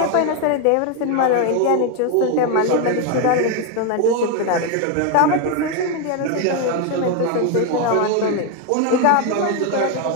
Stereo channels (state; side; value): different; both; correlation 0.01